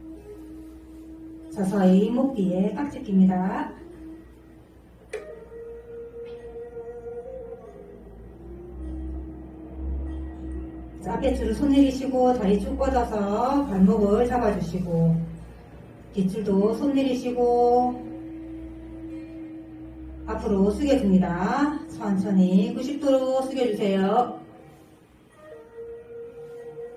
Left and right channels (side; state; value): both; identical; correlation 1.00